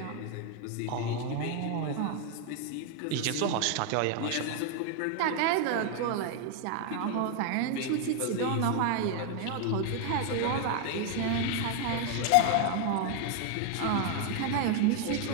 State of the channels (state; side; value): different; both; correlation 0.01